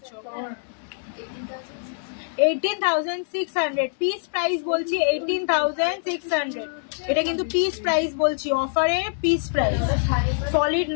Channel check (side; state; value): right; silent; digital silence